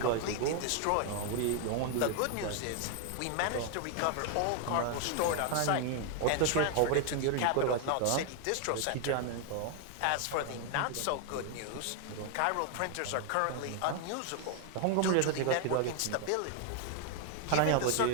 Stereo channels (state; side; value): different; both; correlation 0.00